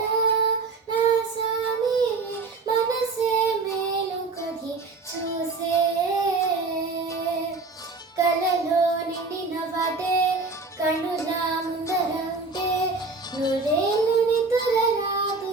నా స్వామి మనసే మేలుకొని చూసే కలలో నిండిన వాటే కనుల ముందర ఉంటే నూరేళ్ళు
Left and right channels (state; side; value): quieter; left; 3.9 dB